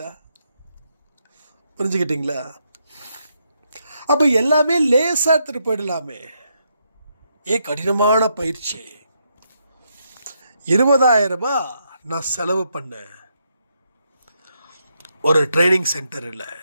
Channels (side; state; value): both; inverted; correlation -0.79